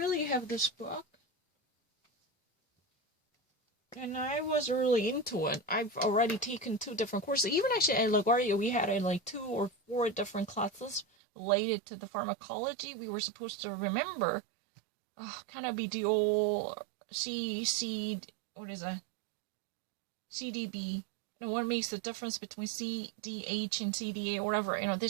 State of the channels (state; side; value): drops out; left; at 11.1 s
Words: have this book. And I was really into it. I've already taken 2 different courses. Even actually at LaGuardia, we had 2 or 4 different classes related to the pharmacology. We were supposed to remember kind of be the old what is that? CDB. What makes the difference between CDH and CDA or whatever.